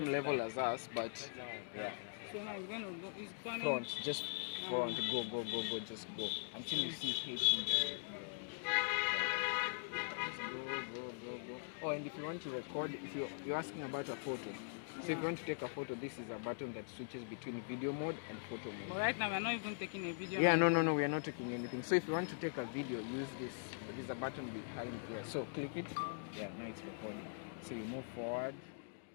level as us, but yeah. So now it's going to go. It's going Front, just front. Go. Just go until you see H in the. Go. Oh, and if you want to record, if you're asking about a photo, so if you want to take a photo, this is a button that switches between video mode and photo mode. But right now we're not even taking a video. Yeah, no, we are not taking anything. So if you want to take a video, use this. There's a button behind here. So click it. Yeah, now it's recording. So you move forward.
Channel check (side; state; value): right; silent; digital silence